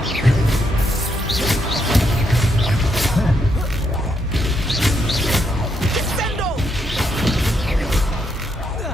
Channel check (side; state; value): both; normal; correlation 0.77